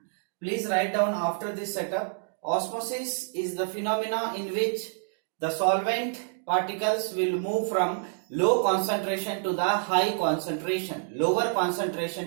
Please write down after this setup. Osmosis is the phenomena in which the solvent particles will move from low concentration to the high concentration, lower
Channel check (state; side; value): silent; left; 59 dB below the other